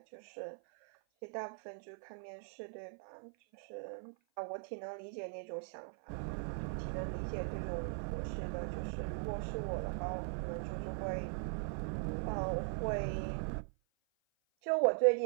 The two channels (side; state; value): left; silent; 51 dB below the other